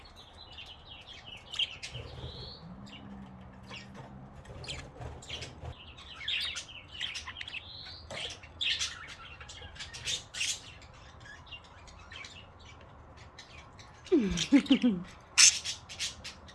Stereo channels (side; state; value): both; identical; correlation 1.00